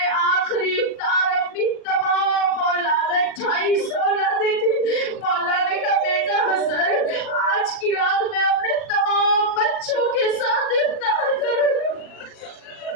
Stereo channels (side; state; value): right; late; 39 ms